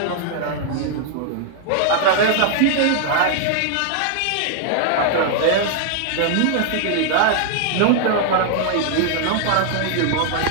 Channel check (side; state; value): both; different; correlation -0.01